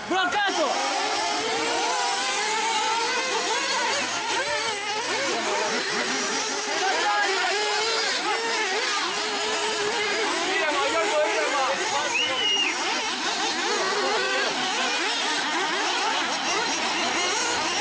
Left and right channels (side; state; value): both; identical; correlation 1.00